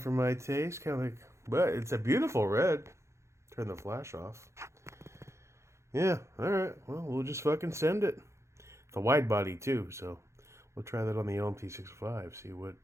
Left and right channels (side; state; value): left; late; 0.14 ms